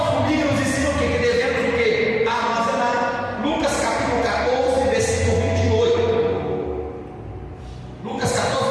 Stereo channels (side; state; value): both; identical; correlation 1.00